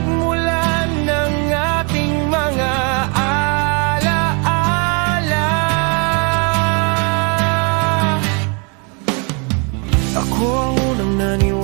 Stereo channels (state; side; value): quieter; left; 34.1 dB